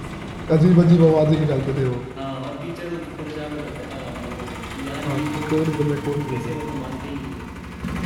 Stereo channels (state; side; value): identical; both; correlation 1.00